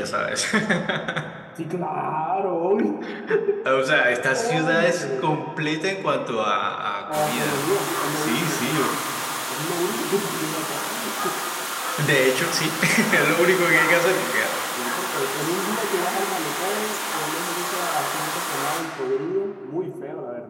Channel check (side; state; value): both; identical; correlation 1.00